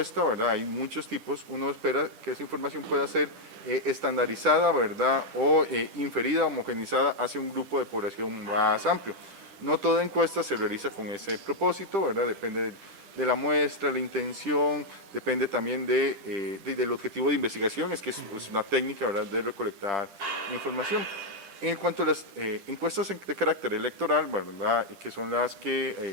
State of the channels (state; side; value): late; left; 10 ms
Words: ¿verdad?, hay muchos tipos. Uno espera que esa información pueda ser estandarizada, ¿verdad? O inferida, homogenizada hacia un grupo de población más amplio. No toda encuesta se realiza con ese propósito, ¿verdad? Depende de la muestra, la intención, depende también del objetivo de investigación, es que es una técnica, ¿verdad?, de recolectar información. En cuanto a las encuestas de carácter electoral, ¿verdad?, que son las